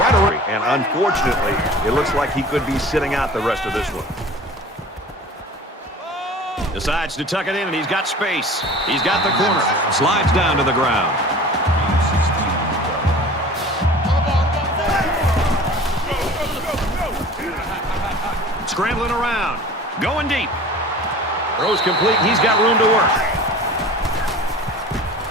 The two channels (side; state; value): both; normal; correlation 0.41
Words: right away. And unfortunately, it looks like he could be sitting out the rest of this one. Decides to tuck it in, and he's got space. He's got the corner. Slides down to the ground. Scrambling around. Going deep. Throws complete. He's got room to work.